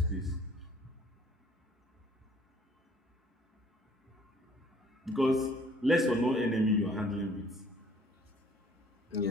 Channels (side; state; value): both; normal; correlation 0.57